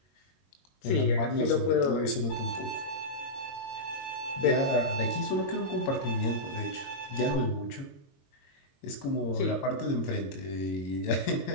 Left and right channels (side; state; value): right; late; 22 ms